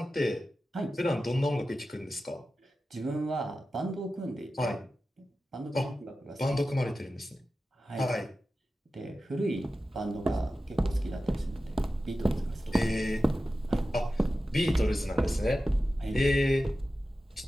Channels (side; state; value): both; normal; correlation 0.93